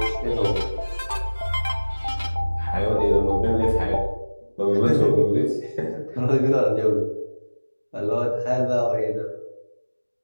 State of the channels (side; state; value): both; inverted; correlation -1.00